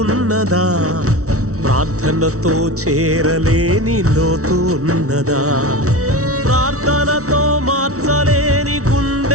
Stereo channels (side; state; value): left; late; 0.64 ms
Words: ఉన్నదా, ప్రార్థనతో చేరలేని లోతు ఉన్నదా, ప్రార్థనతో మార్చలేని